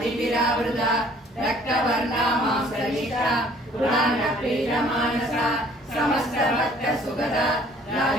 रक्तवर्णा मांसलिता पुराणप्रीतमानसा समस्तभक्तसुगदा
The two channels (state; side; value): normal; both; correlation 0.56